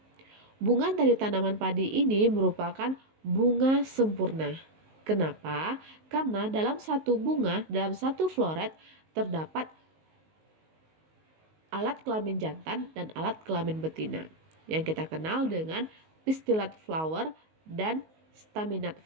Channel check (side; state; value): left; late; 19 ms